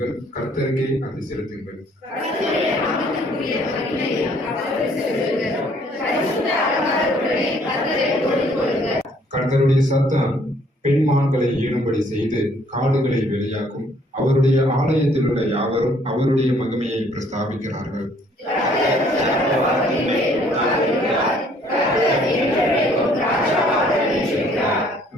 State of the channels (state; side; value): normal; both; correlation 0.62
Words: கர்த்தருக்கே அதை செலுத்துங்கள். கர்த்தருடைய சத்தம் பெண்மான்களை ஈடும்படி செய்து காடுகளை வெளியாக்கும். அவருடைய ஆலயத்தில் உள்ள யாவரும் அவருடைய மகிமையை பிரஸ்தாபிக்கிறார்கள்.